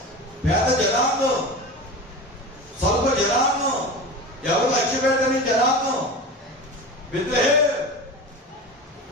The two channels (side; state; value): both; normal; correlation 0.29